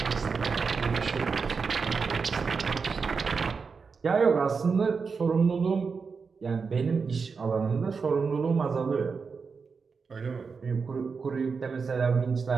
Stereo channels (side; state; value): left; quieter; 5.2 dB